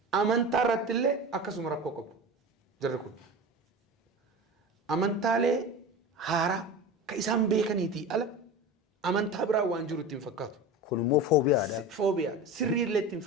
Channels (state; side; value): normal; both; correlation 0.30